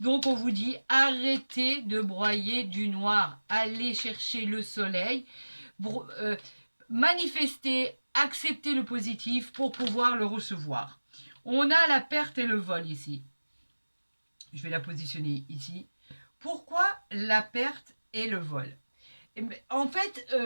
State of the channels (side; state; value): both; inverted; correlation -1.00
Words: Donc, on vous dit, arrêtez de broyer du noir. Allez chercher le soleil. Manifestez, acceptez le positif pour pouvoir le recevoir. On a la perte et le vol ici. Je vais la positionner ici. Pourquoi la perte et le vol? En fait,